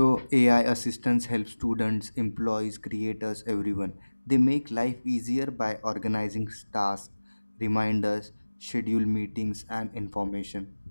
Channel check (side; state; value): both; inverted; correlation -1.00